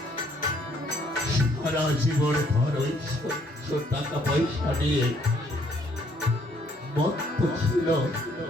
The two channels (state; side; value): normal; both; correlation 0.66